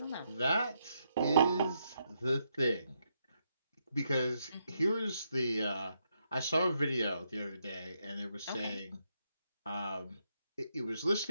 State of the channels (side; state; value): both; inverted; correlation -0.79